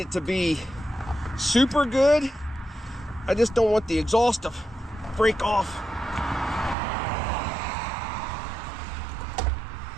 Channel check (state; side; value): drops out; left; at 6.8 s